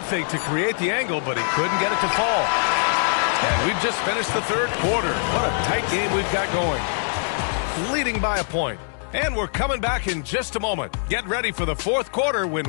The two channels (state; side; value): silent; right; 63 dB below the other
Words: fake to create the angle, but he couldn't get it to fall. And we've just finished the third quarter. What a tight game we've got going. Leading by a point. And we're coming back in just a moment. Get ready for the fourth quarter